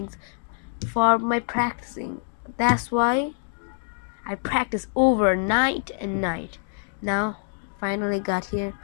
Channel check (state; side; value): silent; right; digital silence